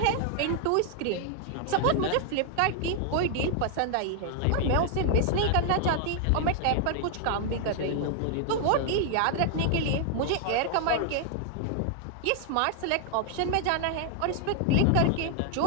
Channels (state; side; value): different; both; correlation 0.00